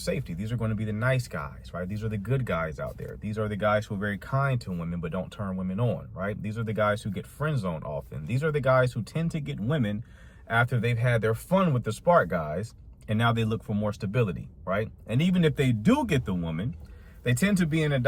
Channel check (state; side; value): identical; both; correlation 1.00